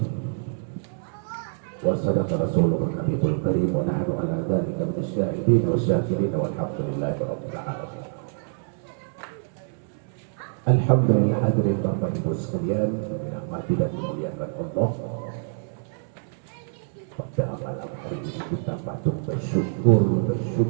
وصدق رسوله النبي الكريم ونحن على ذلك من الشاهدين والشاكرين والحمد لله رب العالمين. Alhamdulillah, hadirin Bapak Ibu sekalian, dirahmati dan dimuliakan Allah. Pada malam hari ini kita patut bersyukur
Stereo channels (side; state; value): left; silent; 61 dB below the other